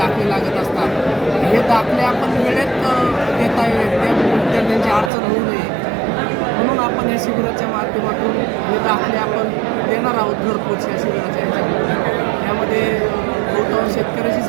लागत असतात. हे दाखले आपण वेळेत देता येईल त्या त्यांची अडचण होऊ नये म्हणून आपण या शिबिराच्या माध्यमातून हे दाखले आपण देणार आहोत घरपोच या शिबिराच्या ह्याच्यामध्ये. यामध्ये बहुतांश शेतकऱ्याचीच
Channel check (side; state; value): left; drops out; at 5.1 s